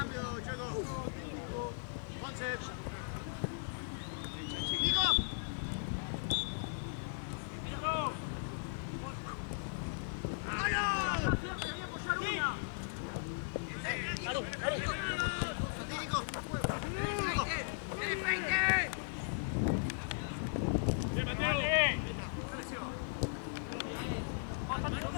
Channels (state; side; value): silent; right; digital silence